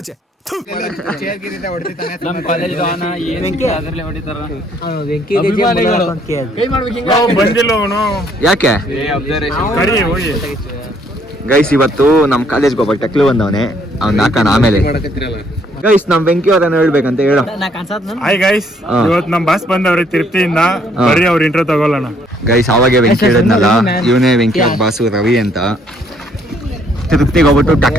ಯಾಕೆ ಗೈಸ್, ಇವತ್ತು ನಮ್ ಕಾಲೇಜ್ಗೆ ಒಬ್ಬ ಟಕ್ಲು ಬಂದವನೆ, ಅವ್ನ್ ಹಾಕೋಣ ಆಮೇಲೆ. ಗೈಸ್, ನಮ್ ಬೆಂಕಿ ಅವರನ್ನ ಹೇಳ್ಬೇಕಂತ ಹೇಳೋ. ಹಾಯ್ ಗೈಸ್, ಇವತ್ತು ನಮ್ ಬಾಸ್ ಬಂದವ್ರೆ ತಿರುಪ್ತಿಯಿಂದ, ಬರ್ರಿ ಅವ್ರ ಇಂಟ್ರೋ ತಗೊಳ್ಳೋಣ. ಗೈಸ್, ಅವಾಗೆ ವೆಂಕಿ ಹೇಳಿದ್ನಲ್ಲ, ಇವನೇ ವೆಂಕಿ ಅವ್ರ ಬಾಸು ರವಿ ಅಂತ. ತಿರುಪ್ತಿಗೆ ಹೋಗ್ಬಿಟ್ಟು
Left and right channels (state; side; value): normal; both; correlation 0.66